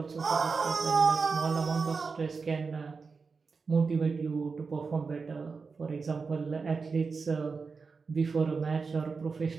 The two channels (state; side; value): quieter; left; 4.8 dB